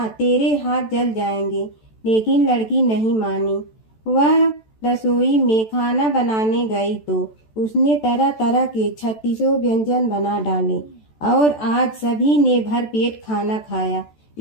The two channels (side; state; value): right; late; 14 ms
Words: तेरे हाथ जल जाएंगे। लेकिन लड़की नहीं मानी। वह रसोई में खाना बनाने गई तो उसने तरह तरह के 36 व्यंजन बना डाले और आज सभी ने भर पेट खाना खाया।